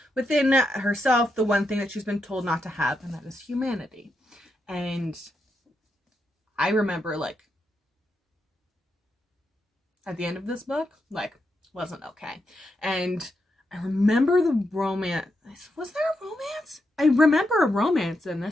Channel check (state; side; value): normal; both; correlation 0.84